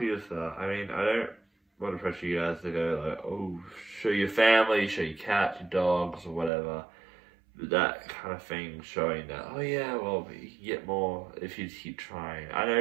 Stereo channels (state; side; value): drops out; left; at 6.5 s